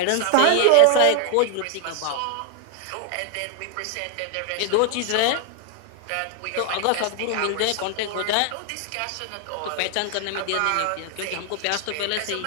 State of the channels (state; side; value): different; both; correlation 0.00